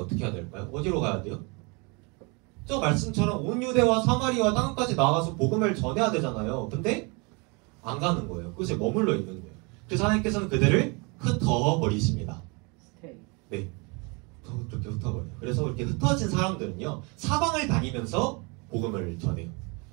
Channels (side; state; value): left; quieter; 30.3 dB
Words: 해야 될까요? 어디로 가야 돼요? 저 말씀처럼 온 유대와 사마리아 땅까지 나가서 복음을 전해야 되잖아요. 근데 안 가는 거예요. 그것에 머물러 있는 거예요. 그래서 하나님께서는 그들을 흩어버리십니다. 네, 그렇게 흩어버려요. 그래서 이렇게 흩어진 사람들은요, 사방을 다니면서 복음을 전해요.